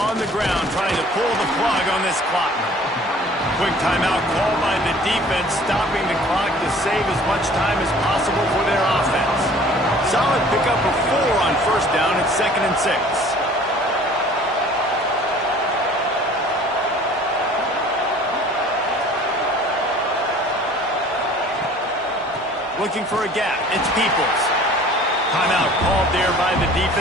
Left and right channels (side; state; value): both; normal; correlation 0.50